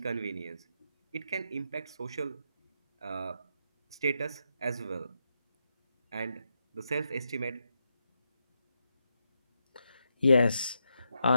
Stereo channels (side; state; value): both; inverted; correlation -0.83